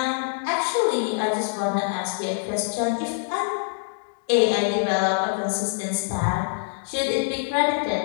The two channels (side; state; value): right; silent; digital silence